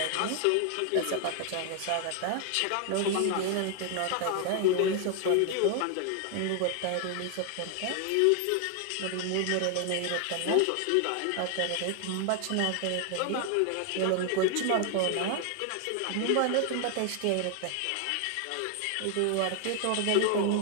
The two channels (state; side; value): different; both; correlation 0.00